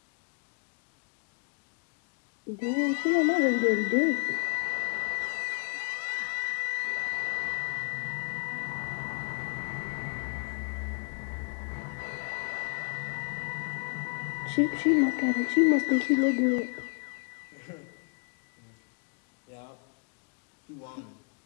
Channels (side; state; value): right; quieter; 34.2 dB